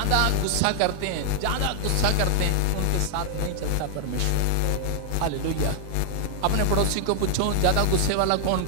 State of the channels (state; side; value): different; both; correlation 0.00